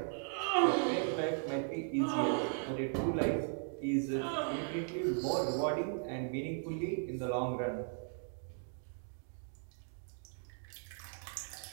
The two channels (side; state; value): left; silent; 53 dB below the other